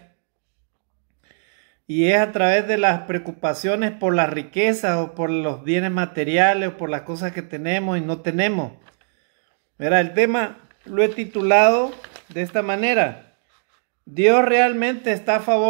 y es a través de las preocupaciones por la riqueza o por los bienes materiales o por las cosas que tenemos y no tenemos. Mira, el tema lo he titulado de esta manera: ¿Dios realmente está a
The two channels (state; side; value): silent; left; digital silence